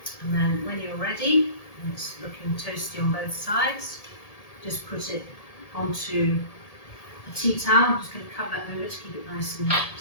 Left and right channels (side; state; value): right; late; 1.7 ms